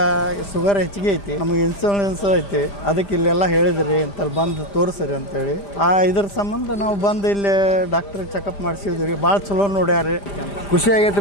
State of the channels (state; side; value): late; right; 5.0 ms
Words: ಶುಗರ್ ಹೆಚ್ಚಿಗೆ ಐತಿ, ನಮಗೆ ಇನ್ಸುಲೆನ್ಸ್ ಐತಿ, ಅದಕ್ಕೆ ಇಲ್ಲೆಲ್ಲ ಹೇಳಿದ್ರಿ ಅಂತಲ್ಲಿ ಬಂದು ತೋರಿಸ್ರಿ ಅಂತೇಳಿ ಇದ್ರ ಸಂಬಂಧ ನಾವು ಬಂದು ಇಲ್ಲಿ ಡಾಕ್ಟ್ರ್ ಚೆಕಪ್ ಮಾಡಿಸಿದ್ವಿ. ಭಾಳ ಚಲೋ ನೋಡ್ಯಾರಿ, ಖುಷಿ